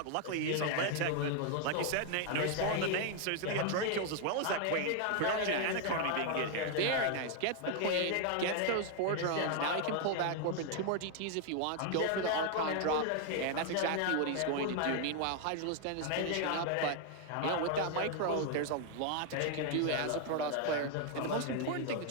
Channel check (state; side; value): different; both; correlation 0.00